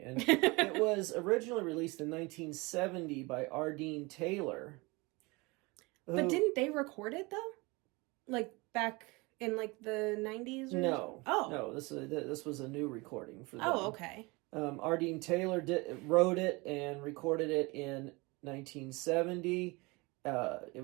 And it was originally released in 1970 by Ardeen Taylor. But didn't they record it, though? Like, back in, like, the 90s? Or No. Oh. No, this was a new recording for them. Oh, okay. Ardeen Taylor wrote it and recorded it in 1970.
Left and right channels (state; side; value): quieter; left; 25.2 dB